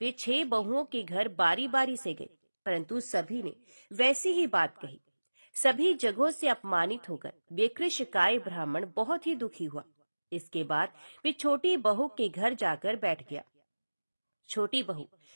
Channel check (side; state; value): both; inverted; correlation -1.00